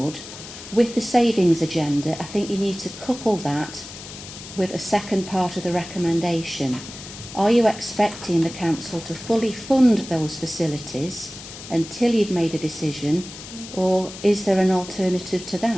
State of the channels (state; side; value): noise; left; hiss, 13 dB below the sound